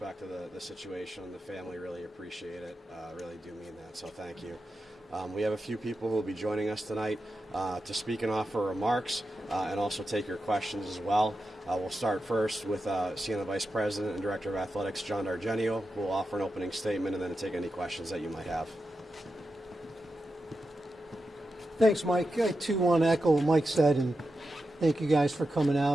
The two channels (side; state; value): both; normal; correlation 0.89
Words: of the situation and the family. Really appreciate it. Really do mean that, so thank you. We have a few people who will be joining us tonight to speak and offer remarks and also take your questions as well. We'll start first with Siena Vice President and Director of Athletics, John D'Argenio, who will offer an opening statement and then take any questions that you might have. Thanks, Mike. I too want to echo what Mike said, and thank you guys for coming